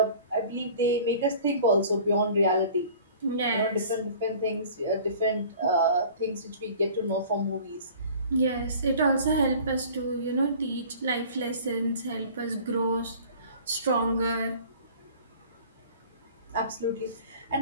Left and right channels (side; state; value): both; inverted; correlation -0.46